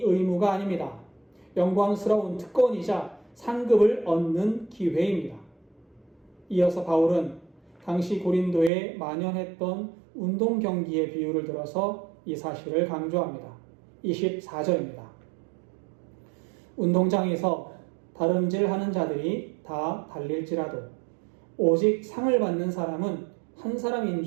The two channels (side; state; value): left; drops out; at 8.7 s